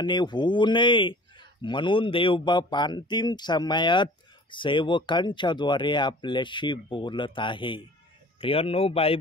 होऊ नये म्हणून देवबाप अंतिम समयात सेवकांच्याद्वारे आपल्याशी बोलत आहे. प्रियांनो,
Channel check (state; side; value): normal; both; correlation 0.46